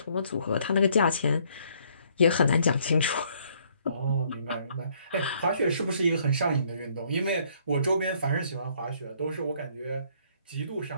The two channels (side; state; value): both; inverted; correlation -0.65